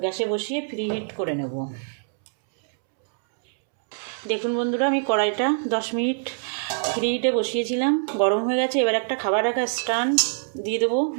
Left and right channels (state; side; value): silent; left; 62 dB below the other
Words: গ্যাসে বসিয়ে প্রিহিট করে নেব। দেখুন বন্ধুরা, আমি কড়াইটা 10 মিনিট প্রিহিটে বসিয়েছিলাম, গরম হয়ে গেছে। এবার একটা খাবার রাখা স্ট্যান্ড দিয়ে দেবো